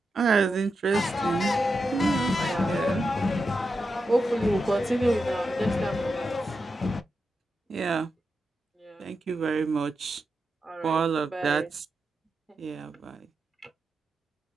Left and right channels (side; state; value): both; normal; correlation 0.88